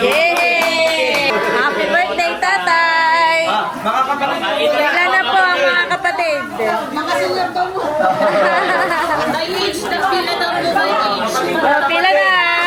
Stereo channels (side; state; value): both; identical; correlation 1.00